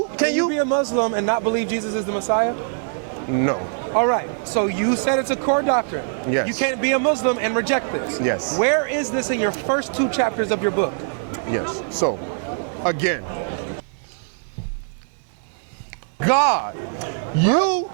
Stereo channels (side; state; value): left; silent; 61 dB below the other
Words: be a Muslim and not believe Jesus is the Messiah? No. All right, so you said it's a core doctrine. Yes. You can't be a Muslim and reject this. Yes. Where is this in your first 2 chapters of your book? Yes. So, again, that is not the core doctrine of God.